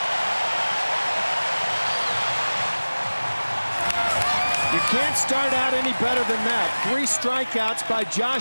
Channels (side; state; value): both; inverted; correlation -1.00